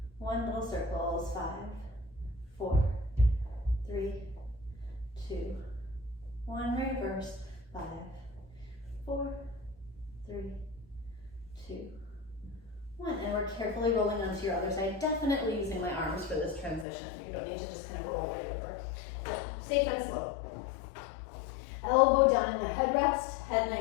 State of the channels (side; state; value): right; drops out; at 16.9 s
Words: 1. Little circles. 5, 4, 3, 2, 1. Reverse. 5, 4, 3, 2, 1. And we're carefully rolling onto your other side. Definitely using my arms for this transition. You don't need to just kind of roll right over. Safe and slow. Elbow down in the headrest, head